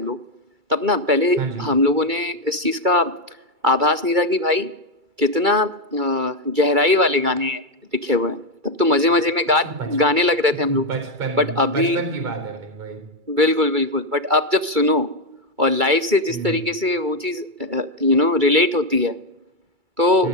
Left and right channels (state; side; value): late; left; 2.3 ms